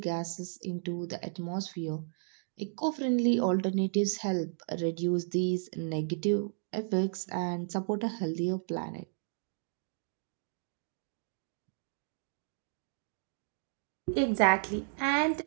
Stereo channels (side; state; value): left; silent; digital silence